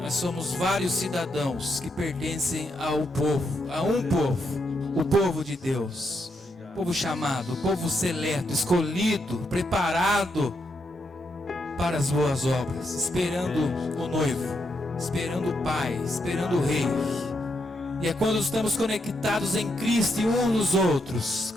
Nós somos vários cidadãos que pertencem ao povo, a um povo, o povo de Deus. Povo chamado, povo seleto, escolhido, preparado para as boas obras, esperando o noivo, esperando o Pai, esperando o Rei. E é quando estamos conectados em Cristo e uns nos outros,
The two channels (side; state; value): both; normal; correlation 0.80